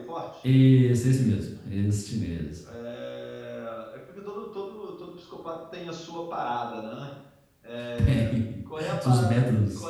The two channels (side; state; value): both; identical; correlation 1.00